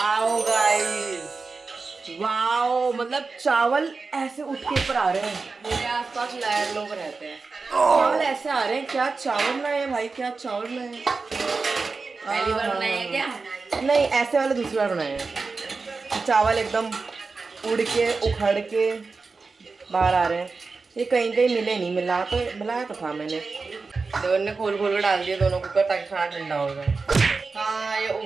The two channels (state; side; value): quieter; left; 4.3 dB